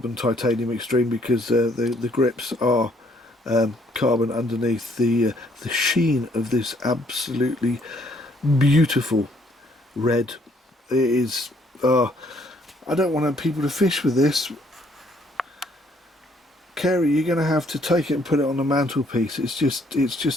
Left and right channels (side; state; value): both; normal; correlation 0.66